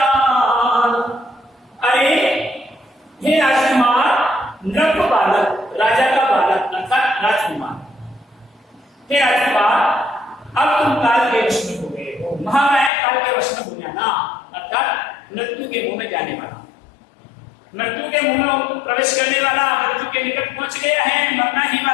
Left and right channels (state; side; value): drops out; right; at 12.9 s